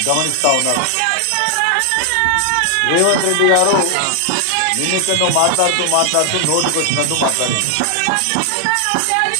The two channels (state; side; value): different; both; correlation 0.00